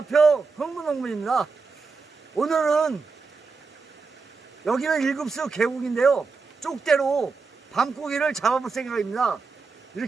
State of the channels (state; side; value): quieter; left; 4.5 dB